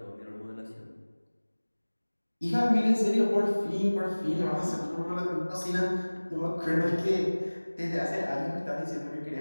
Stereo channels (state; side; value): inverted; both; correlation -1.00